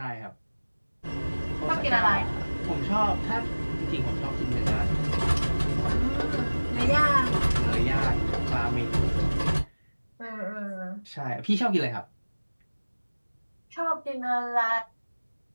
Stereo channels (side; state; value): both; inverted; correlation -1.00